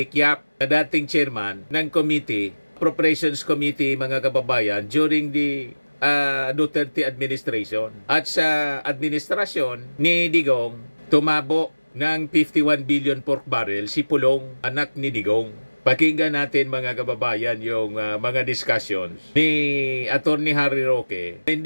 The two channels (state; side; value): inverted; both; correlation -1.00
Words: Yap, na dating chairman ng committee, Appropriations Committee mga kababayan during the Duterte administration. At sa administrasyon ni Digong, tumabo ng 51 billion pork barrel si Pulong, anak ni Digong. Pakinggan natin mga kababayan yung mga discussions ni Attorney Harry Roque.